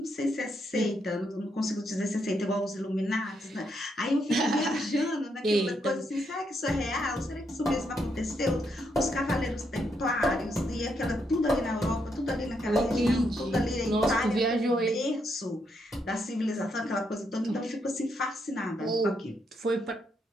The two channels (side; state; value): both; normal; correlation 0.78